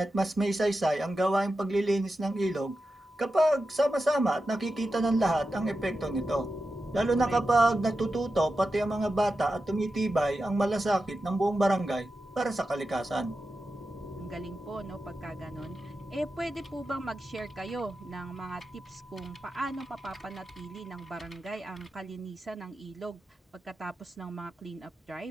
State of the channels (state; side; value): normal; both; correlation 0.90